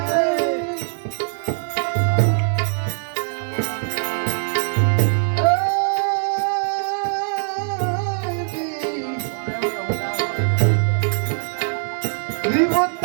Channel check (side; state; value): left; silent; 60 dB below the other